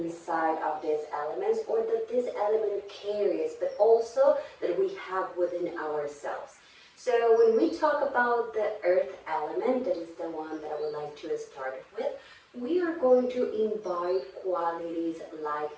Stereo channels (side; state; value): both; identical; correlation 1.00